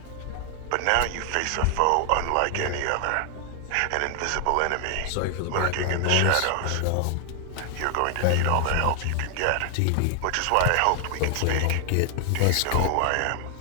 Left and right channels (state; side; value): different; both; correlation 0.00